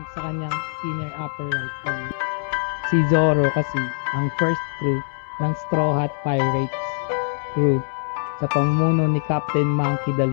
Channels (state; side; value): silent; right; digital silence